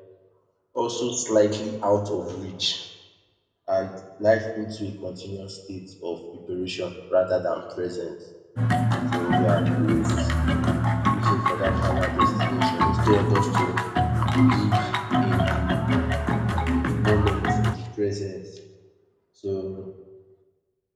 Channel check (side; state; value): both; identical; correlation 1.00